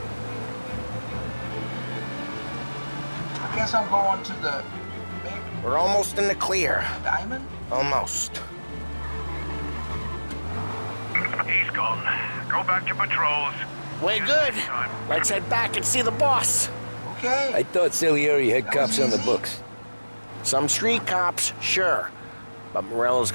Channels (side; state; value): both; inverted; correlation -1.00